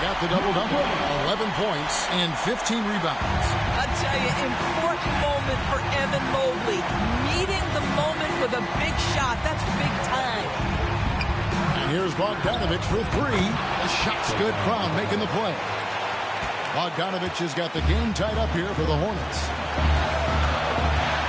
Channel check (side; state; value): both; identical; correlation 1.00